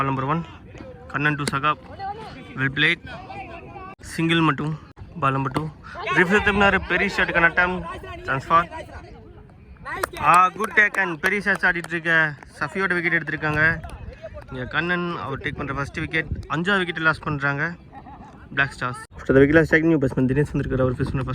number 1. Kannan to Saqib. Well played. Single மட்டும். Ball number 2. ரிஃப்ளெக்ட் பெரிய ஷாட் கனட்டம். ட்ரான்ஸ்ஃபார். குட் டேக் அண்ட் பெரிய ஷாட்ஸ் ஆடிட்டு இருக்க சஃபியோட விக்கெட் எடுத்திருக்காங்க. இங்கே கண்ணன் அவர் டேக் பண்ணுற ஃபர்ஸ்ட் விக்கெட். 5வது விக்கெட் லாஸ் பண்ணுறாங்க black stars. After the wicket strike new batsman Dinesh வந்திருக்காரு. அவர் ஃபேஸ் பண்ண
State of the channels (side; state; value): both; identical; correlation 1.00